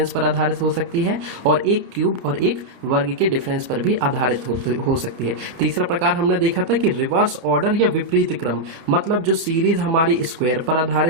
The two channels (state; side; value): late; left; 31 ms